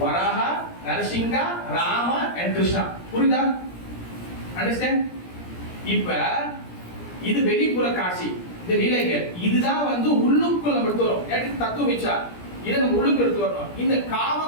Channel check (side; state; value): right; late; 17 ms